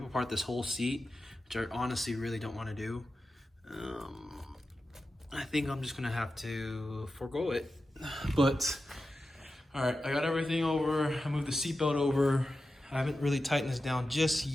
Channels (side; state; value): both; normal; correlation 0.92